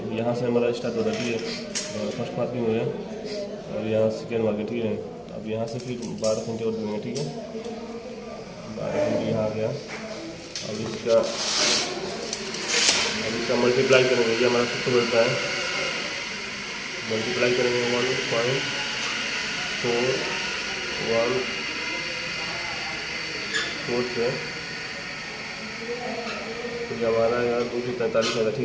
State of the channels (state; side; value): identical; both; correlation 1.00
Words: यहाँ से हमारा स्टार्ट हो रहा है, ठीक है। फर्स्ट मार्किंग हो गया और यहाँ सेकेंड मार्किंग, ठीक है। अब यहाँ से फिर 12 सेंटी और देंगे, ठीक है। 12 सेंटी यहाँ आ गया। अब इसका मल्टीप्लाई करेंगे, ये हमारा सबसे बढ़ता है। मल्टीप्लाई करेंगे 1.4 से, तो ये हमारा यहाँ 243 होगा,